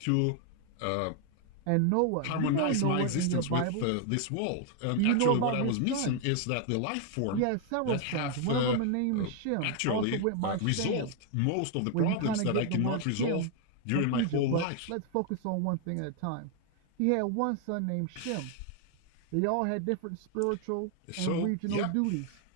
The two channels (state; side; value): different; both; correlation 0.00